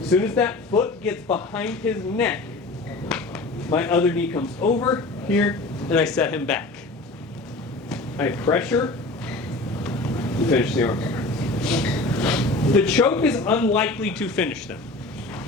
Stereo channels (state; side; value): quieter; right; 3.1 dB